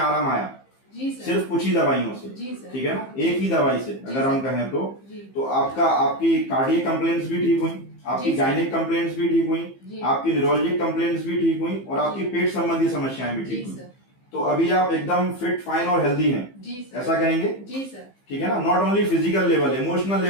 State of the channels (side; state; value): right; late; 15 ms